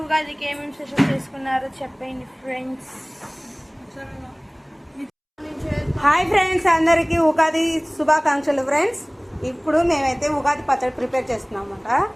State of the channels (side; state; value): both; identical; correlation 1.00